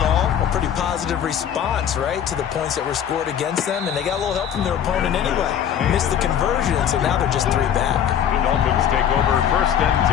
all, a pretty positive response, right, to the points that were scored against them. And they got a little help from their opponent anyway. Missed the conversion, so now they're just 3 back. The Dolphins take over 1st and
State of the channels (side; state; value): right; quieter; 9.1 dB